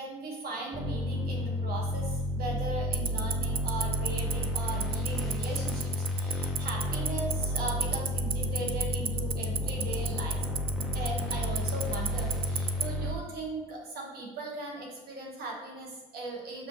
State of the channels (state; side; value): normal; both; correlation 0.38